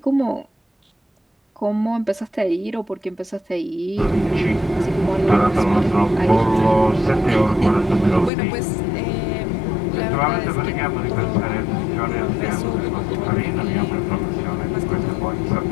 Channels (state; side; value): drops out; right; at 8.3 s